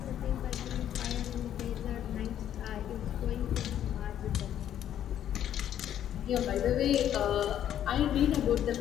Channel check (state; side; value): quieter; right; 10.6 dB